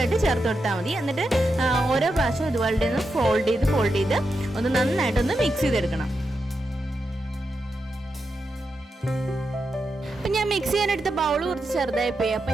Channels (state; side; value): normal; both; correlation 0.87